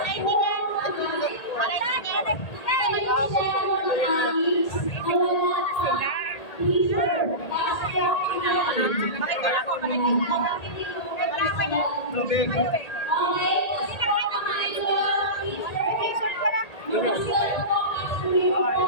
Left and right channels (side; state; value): right; late; 1.8 ms